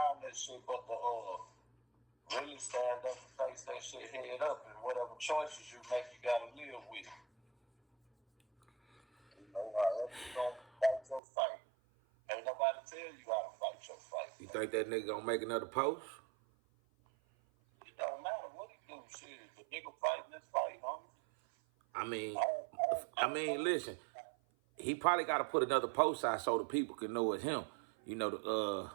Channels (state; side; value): drops out; left; at 11.2 s